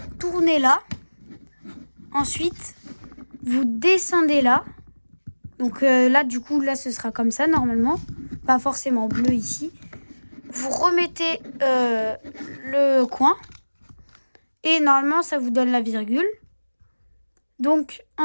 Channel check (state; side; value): inverted; both; correlation -1.00